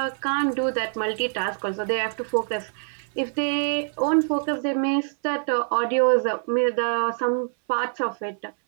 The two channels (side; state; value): left; silent; 62 dB below the other